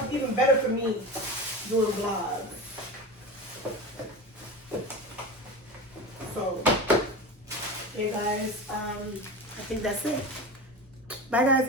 even better for me, doing vlogs. So, hey guys, I think that's it. Bye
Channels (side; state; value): both; normal; correlation 0.27